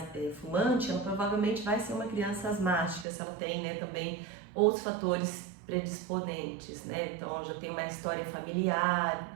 fumante, ela provavelmente vai ser uma criança asmática, se ela tem, né, também outros fatores predisponentes, né? Então, já tem uma história familiar,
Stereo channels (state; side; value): drops out; left; at 3.1 s